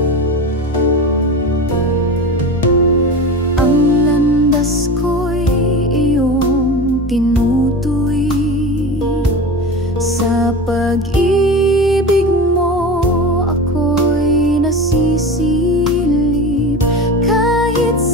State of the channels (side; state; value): both; normal; correlation 0.28